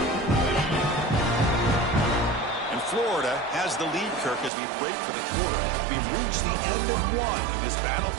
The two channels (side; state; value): left; drops out; at 4.5 s